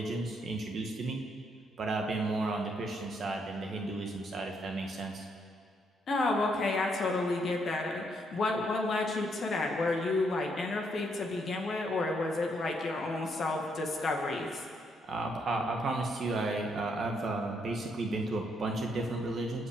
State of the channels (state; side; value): normal; both; correlation 0.74